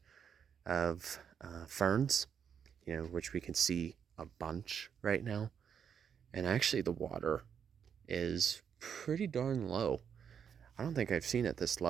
of ferns, which we can see a bunch right now. And actually the water is pretty darn low. I don't think I've seen it this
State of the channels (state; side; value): quieter; left; 7.7 dB